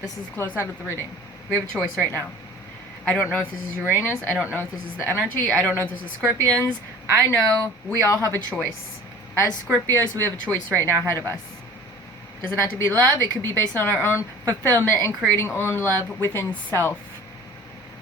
This is the close out of the reading. We have a choice right now. I don't know if this is Uranus. I don't know if this is the energy. I don't know if this is Scorpions. I know we all have a choice. As Scorpios, we have a choice right now ahead of us. Doesn't have to be love. It could be based on our own fulfillment and creating own love within self.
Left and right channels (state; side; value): normal; both; correlation 0.44